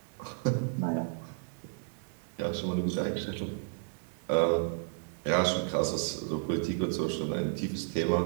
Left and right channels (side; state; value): left; silent; digital silence